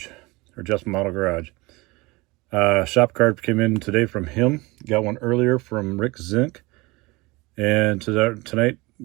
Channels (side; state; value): left; quieter; 23.4 dB